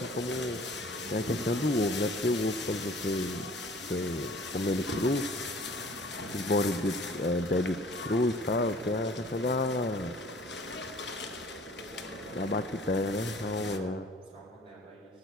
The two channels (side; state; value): both; normal; correlation 0.50